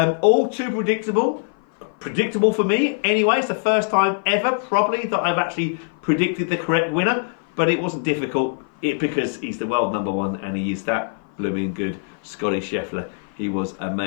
All too predictable. Predictable for me anyway. It's the first time ever probably that I've actually predicted the correct winner. But it wasn't difficult because he's the world number one and he is that blooming good. Scotty Scheffler. He was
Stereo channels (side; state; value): right; silent; 56 dB below the other